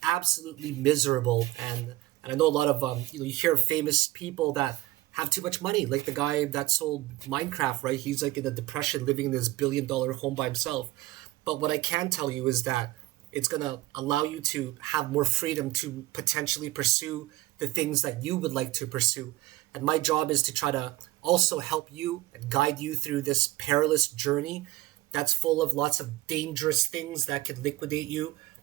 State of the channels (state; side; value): quieter; left; 17.8 dB